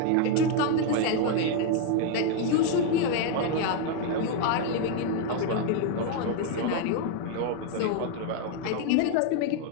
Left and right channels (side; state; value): both; different; correlation 0.00